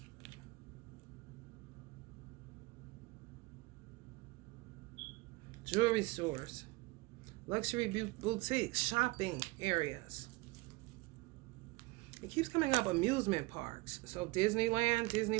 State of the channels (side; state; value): left; quieter; 23.0 dB